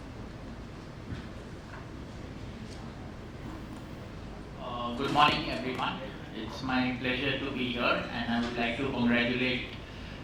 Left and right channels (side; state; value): both; identical; correlation 1.00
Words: Good morning, everyone. It's my pleasure to be here, and I would like to congratulate